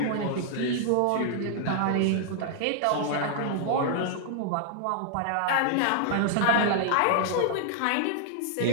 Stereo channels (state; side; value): different; both; correlation 0.00